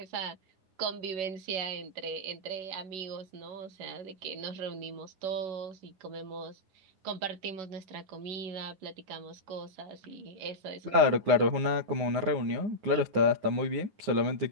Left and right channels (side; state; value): left; late; 9.7 ms